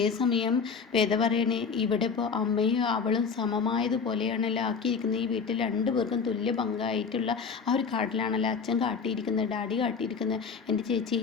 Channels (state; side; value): quieter; right; 5.6 dB